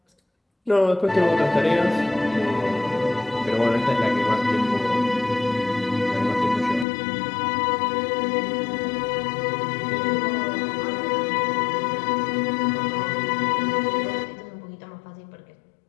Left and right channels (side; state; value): right; drops out; at 6.9 s